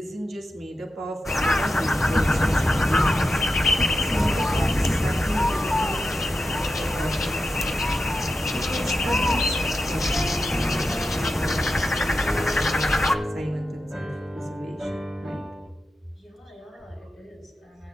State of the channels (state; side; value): normal; both; correlation 0.89